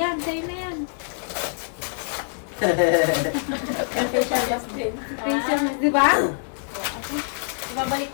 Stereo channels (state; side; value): silent; right; 62 dB below the other